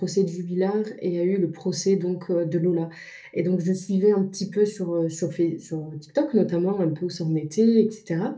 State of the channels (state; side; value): identical; both; correlation 1.00